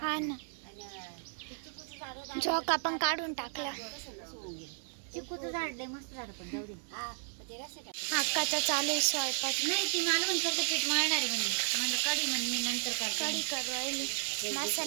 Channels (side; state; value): left; silent; 55 dB below the other